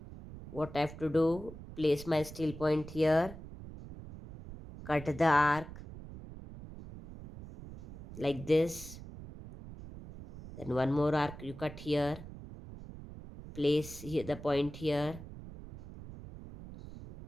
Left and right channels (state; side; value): noise; right; rumble, 14 dB below the sound